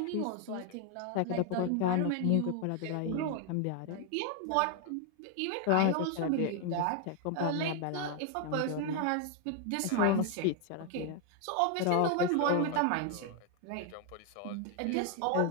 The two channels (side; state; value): both; different; correlation 0.01